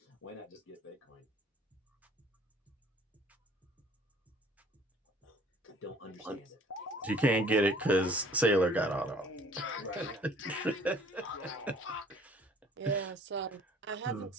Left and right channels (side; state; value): both; normal; correlation 0.53